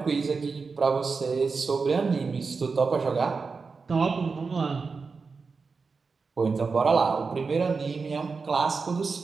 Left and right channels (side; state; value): left; quieter; 4.7 dB